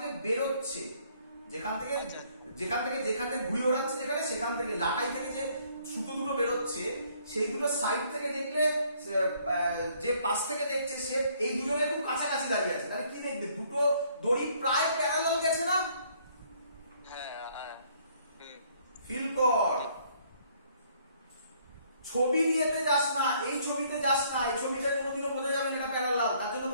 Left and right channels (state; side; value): inverted; both; correlation -0.64